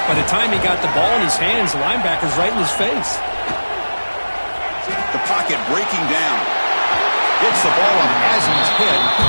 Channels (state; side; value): inverted; both; correlation -1.00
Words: By the time he got the ball in his hands, the linebacker's right in his face. The pocket breaking down. Gets the ball up as he's hit,